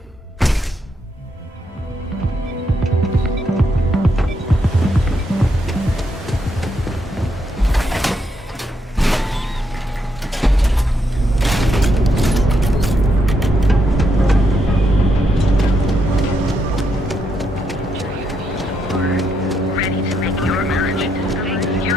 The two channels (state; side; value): normal; both; correlation 0.79